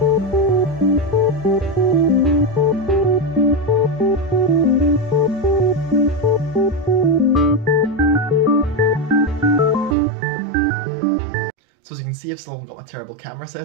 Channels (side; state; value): left; drops out; at 10.0 s